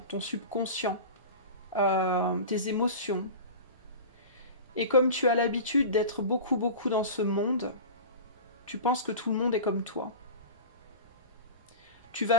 ton subconscient, tes émotions. Et comme tu as l'habitude d'être beaucoup dans ce monde, tu penses que tout le monde est comme toi. Tu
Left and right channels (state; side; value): inverted; both; correlation -0.32